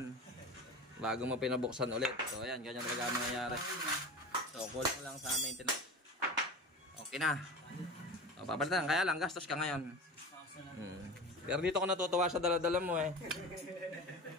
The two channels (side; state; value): both; normal; correlation 0.32